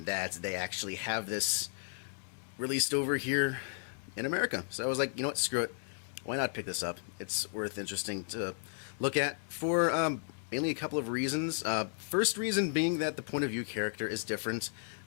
that they actually have this released over here in America. So I was like, you know what, screw it. Why not pick this up? It's interesting to look at for mainly a couple of reasons. First reason being that the point of view character is different,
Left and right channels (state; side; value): silent; right; 55 dB below the other